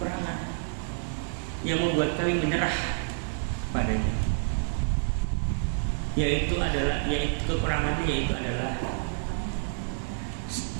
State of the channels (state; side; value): silent; left; digital silence